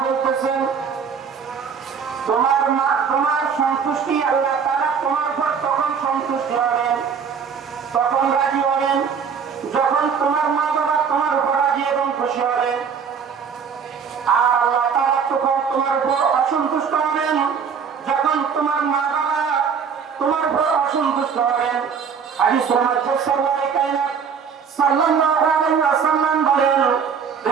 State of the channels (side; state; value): left; quieter; 6.6 dB